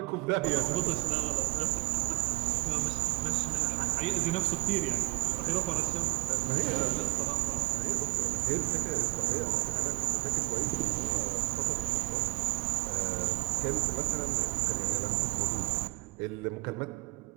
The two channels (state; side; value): quieter; left; 25.9 dB